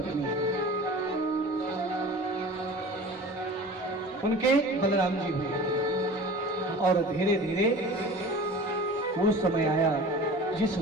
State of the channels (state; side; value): normal; both; correlation 0.39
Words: है। उनके बलराम जी हुए और धीरे धीरे वो समय आया जिस